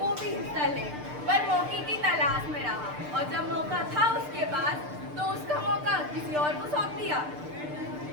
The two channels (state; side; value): late; left; 6.7 ms